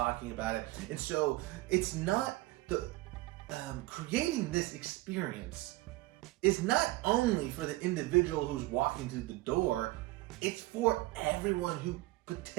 about it. And so it's not the creating this experience is not only for the individual who's walking through the door, it's for everyone who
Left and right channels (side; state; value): left; quieter; 19.7 dB